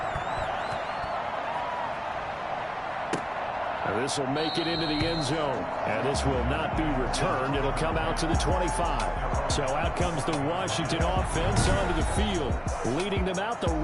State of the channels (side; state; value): both; identical; correlation 1.00